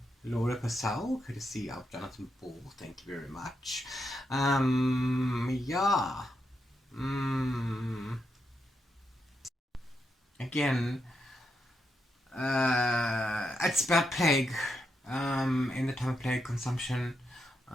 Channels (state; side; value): normal; both; correlation 0.83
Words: Laura Purcell, courtesy of Jonathan Ball. Thank you very much. Yeah. Again, it's about plague, in the time of plague consumption.